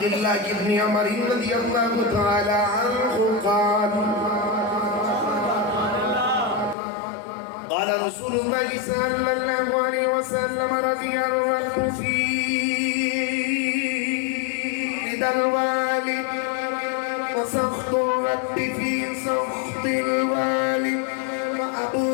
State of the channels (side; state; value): right; drops out; at 6.8 s